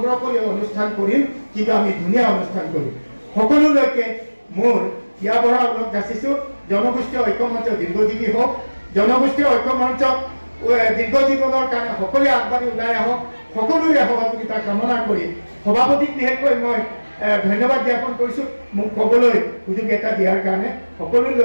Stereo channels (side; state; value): both; inverted; correlation -1.00